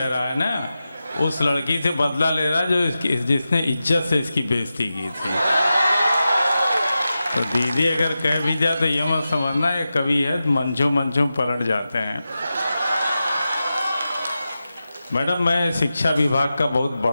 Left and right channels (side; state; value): both; inverted; correlation -0.92